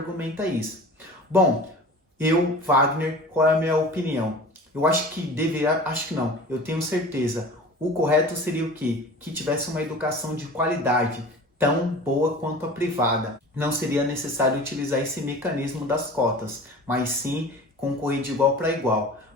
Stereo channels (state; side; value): normal; both; correlation 0.39